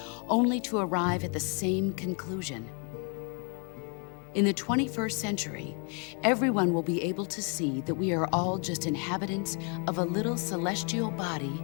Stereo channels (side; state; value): right; quieter; 37.8 dB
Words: only to arrive at the same conclusion. In the 21st century, everyone will be able to see that we are all just inhabitants of a little celestial body